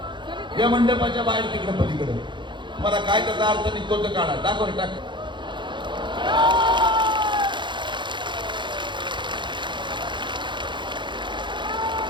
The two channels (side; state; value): left; late; 0.23 ms